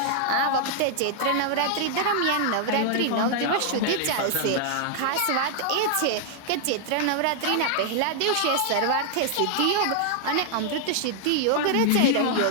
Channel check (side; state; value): both; different; correlation 0.00